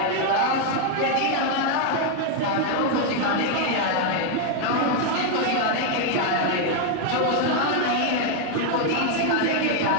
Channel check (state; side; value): different; both; correlation 0.01